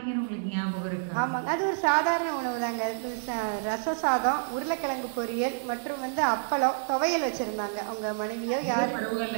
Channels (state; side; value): silent; left; 57 dB below the other